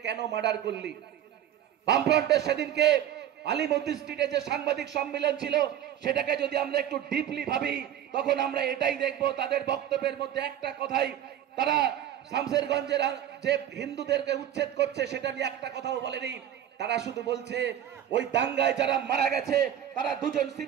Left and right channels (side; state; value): left; quieter; 10.7 dB